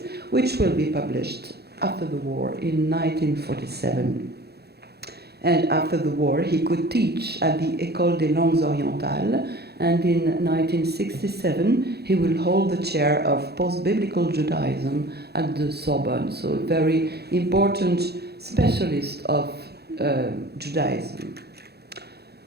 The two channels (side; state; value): left; late; 0.47 ms